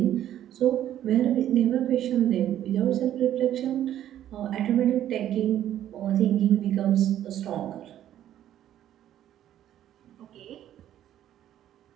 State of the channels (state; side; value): quieter; left; 11.6 dB